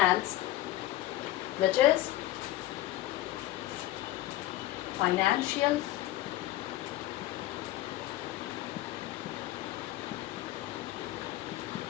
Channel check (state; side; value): quieter; right; 15.4 dB